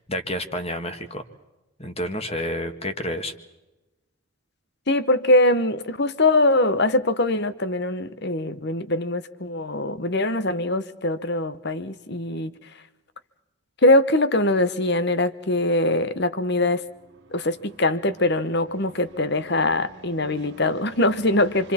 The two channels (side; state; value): both; normal; correlation -0.19